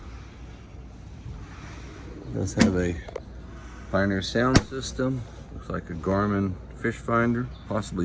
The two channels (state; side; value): identical; both; correlation 1.00